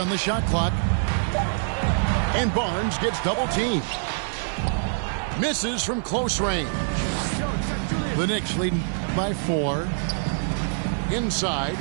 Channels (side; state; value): left; silent; 62 dB below the other